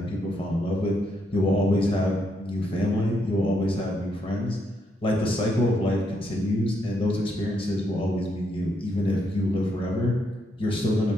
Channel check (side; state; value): both; normal; correlation 0.77